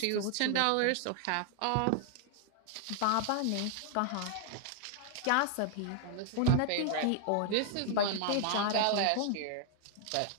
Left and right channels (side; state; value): both; different; correlation 0.00